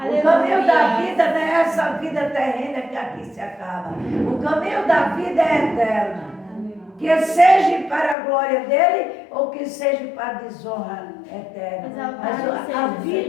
caminho da vida não é essa vida terrena que aqui se acaba. O caminho da vida é eterno. Que seja para a glória dele ou que seja para a desonra eterna. Mas a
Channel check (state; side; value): drops out; right; at 8.2 s